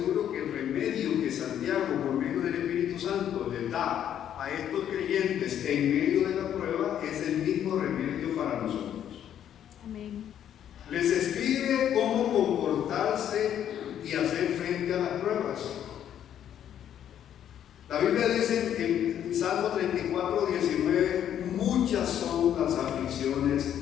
que el remedio que Santiago, por medio del Espíritu Santo, les da a estos creyentes en medio de la prueba es el mismo remedio para nosotros. Amén. Les escribe cómo comportarse y hacer frente a las pruebas. La Biblia dice en Salmo 34, 19, muchas son las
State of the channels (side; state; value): right; quieter; 10.1 dB